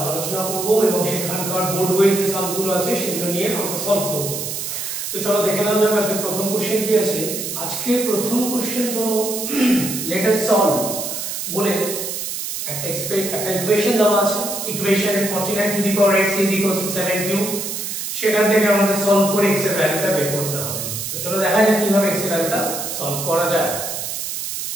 আলোচনা করব এবং সেখানকার বোর্ড ওয়েজ যে সামগুলো আছে সেগুলো নিয়ে আমরা সলভ করব। তো চলো দেখে নেওয়া যাক আজকে প্রথম কোশ্চেন কি আছে। আজকে প্রথম কোশ্চেন হলো লেট আস সলভ বলে একটা ইকুয়েশন দেওয়া আছে। ইকুয়েশনে 49 two the power x is equal to 7 cube. সেখান থেকে আমাদের সলভ করে x এর ভ্যালুটা বের করতে হবে। তো চলো দেখা যাক কিভাবে x এর ভ্যালুটা সলভ করা যায়।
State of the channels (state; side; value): noise; right; hiss, 5 dB below the sound